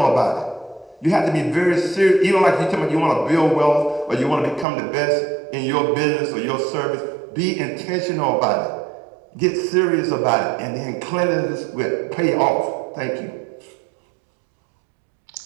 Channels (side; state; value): left; drops out; at 4.7 s